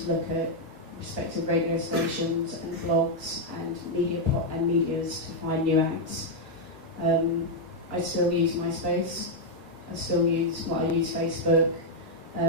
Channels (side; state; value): both; normal; correlation -0.02